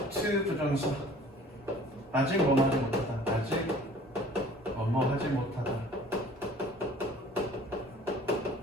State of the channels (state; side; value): normal; both; correlation 0.49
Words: to 부정사 아직 뭐뭐 하지 못하다. 아직 뭐뭐 하지 못하다.